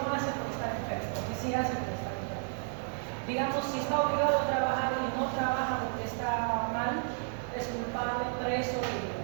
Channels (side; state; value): left; silent; 56 dB below the other